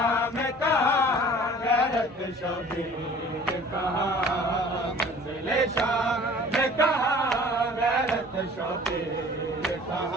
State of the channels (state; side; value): normal; both; correlation 0.48